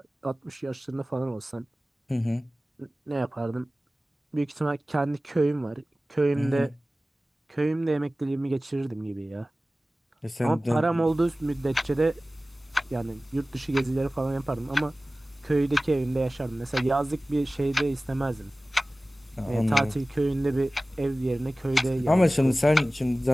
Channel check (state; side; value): normal; both; correlation 0.97